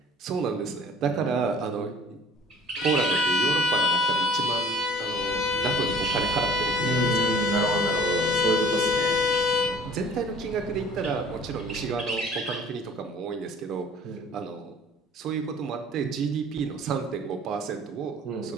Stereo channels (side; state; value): both; normal; correlation 0.50